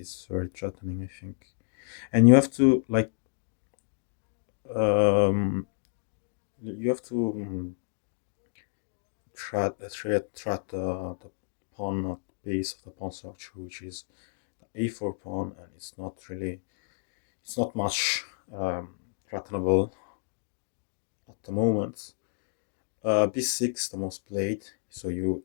very threatening, I think. And you have to like um, you have to threat the pawn at the base of the pawn structure, which is the a4 pawn, and it's not much threatenable at the moment. b6 the most played, so you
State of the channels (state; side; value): silent; right; digital silence